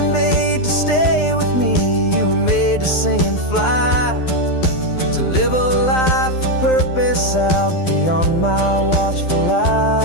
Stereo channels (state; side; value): late; right; 12 ms